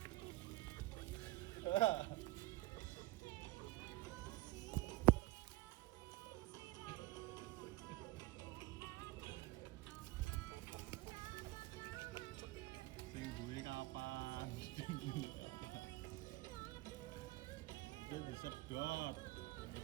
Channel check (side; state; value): left; quieter; 19.1 dB